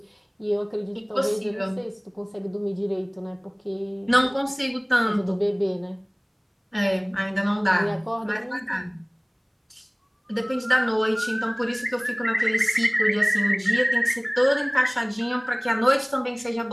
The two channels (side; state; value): both; identical; correlation 1.00